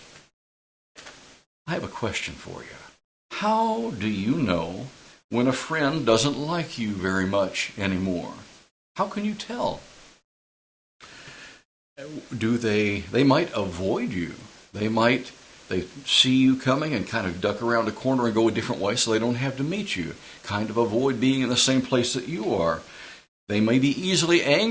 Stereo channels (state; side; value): identical; both; correlation 1.00